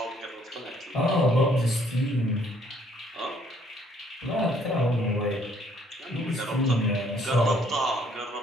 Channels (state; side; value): normal; both; correlation 0.64